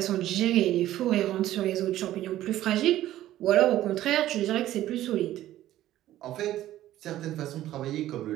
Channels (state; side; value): quieter; left; 13.8 dB